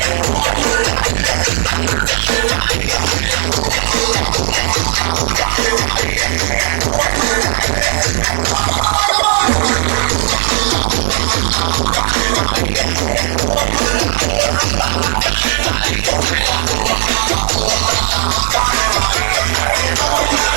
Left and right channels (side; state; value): left; silent; digital silence